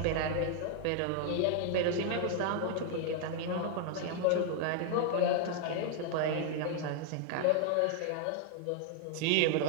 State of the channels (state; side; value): different; both; correlation 0.00